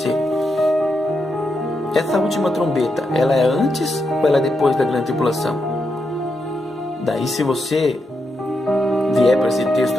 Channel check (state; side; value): normal; both; correlation 0.84